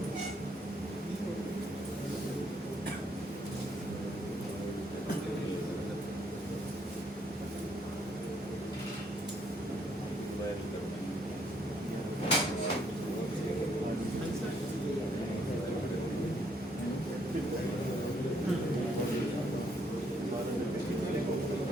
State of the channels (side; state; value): both; normal; correlation 0.70